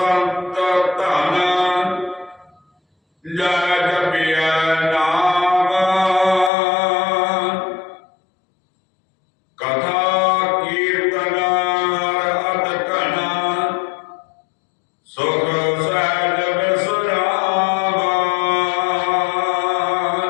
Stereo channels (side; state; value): right; drops out; at 6.5 s